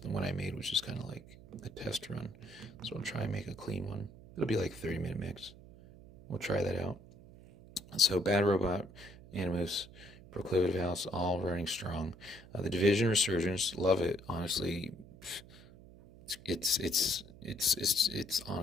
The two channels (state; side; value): noise; right; hum, 19 dB below the sound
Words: the one I made was just kind of like a test run. So I'll try and make a clean one. It'll be like 30-minute mix. We'll try that out. So Bad Robot, Animus, Proclivitive House, all running strong. The Division Resurgence, love it. Honestly, it's